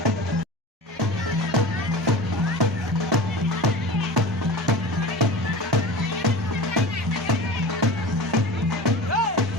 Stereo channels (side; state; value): both; normal; correlation 0.34